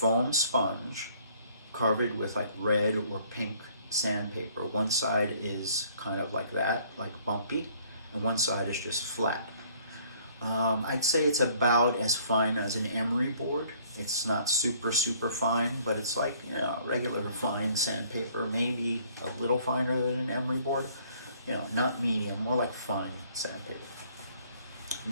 sponge covered with like red or pink sandpaper. One side is kind of like that, like bumpy, and one side is just flat. I'd say it's about as fine as an emery board. It's not super fine, but it's like, regular fine sandpaper, maybe a little finer than an emery board. Not medium, more like fine sandpaper.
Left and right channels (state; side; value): inverted; both; correlation -0.60